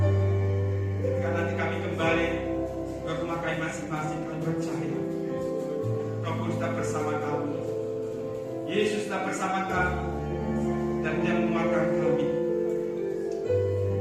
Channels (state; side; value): identical; both; correlation 1.00